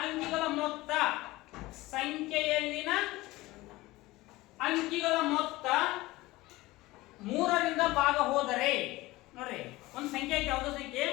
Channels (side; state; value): right; quieter; 19.4 dB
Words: ಅಂಕಿಗಳ ಮೊತ್ತ, ಸಂಖ್ಯೆಯಲ್ಲಿನ ಅಂಕಿಗಳ ಮೊತ್ತ 3ರಿಂದ ಭಾಗ ಹೋದರೆ ನೋಡ್ರಿ, ಒಂದು ಸಂಖ್ಯೆ ಐತೆ ಯಾವುದೋ ಸಂಖ್ಯೆ,